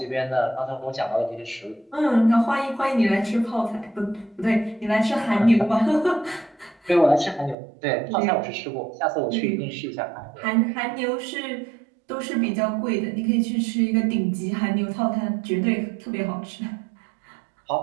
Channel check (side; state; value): left; drops out; at 7.6 s